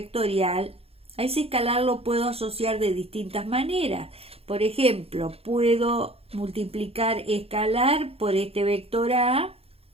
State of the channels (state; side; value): late; left; 0.29 ms